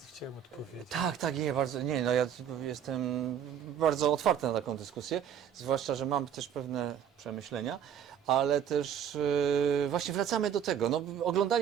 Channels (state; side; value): quieter; left; 8.9 dB